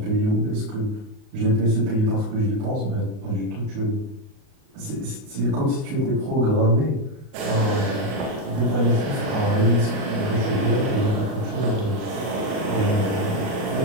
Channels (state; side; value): late; left; 38 ms